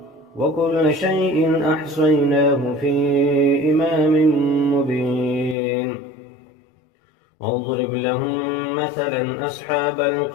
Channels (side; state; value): right; drops out; at 5.6 s